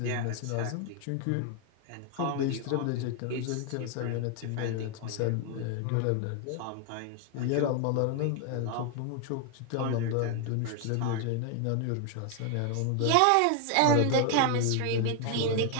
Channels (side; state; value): both; different; correlation 0.00